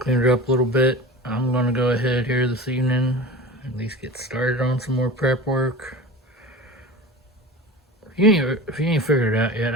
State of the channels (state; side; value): normal; both; correlation 0.32